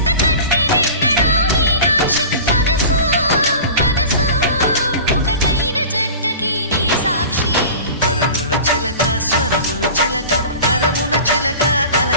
చిలక స్వరములు చిలక కరమున చిలక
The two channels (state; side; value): inverted; both; correlation -0.37